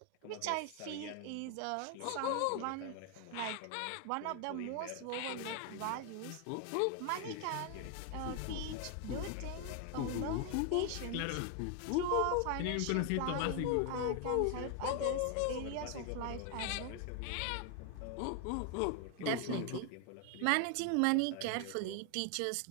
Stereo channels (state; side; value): different; both; correlation 0.00